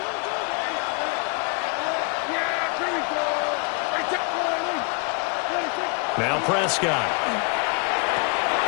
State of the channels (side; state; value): right; quieter; 32.7 dB